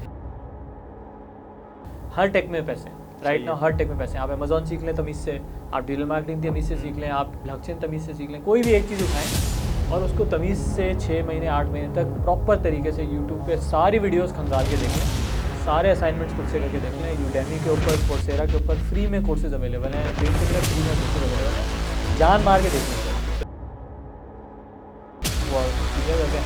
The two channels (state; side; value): identical; both; correlation 1.00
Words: हर टेक में पैसे राइट नाउ, हर टेक में पैसे। आप अमेजोन सीख लें तमीज़ से, आप डिजिटल मार्केटिंग तमीज़ से सीख लें, आप ब्लॉकचेन तमीज़ से सीख लें, कोई भी एक चीज़ उठाएं और उसको तमीज़ से 6 महीने 8 महीने तक प्रॉपर तरीके से यूट्यूब पे सारी वीडियोस खंगाल के देख लें, सारे असाइनमेंट्स खुद से करके देख लें। यूडेमी के ऊपर, कोर्सेरा के ऊपर फ्री में कोर्सेज अवेलेबल हैं, लिंक्डइन में फ्री में कोर्सेज अवेलेबल हैं, जान मार के देख लें सर। वो चीज़ें करके